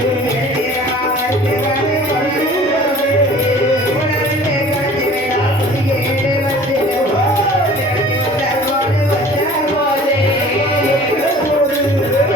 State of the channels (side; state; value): both; normal; correlation 0.47